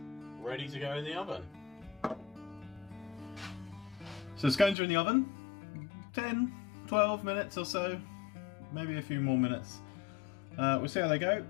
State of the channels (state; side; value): drops out; right; at 4.8 s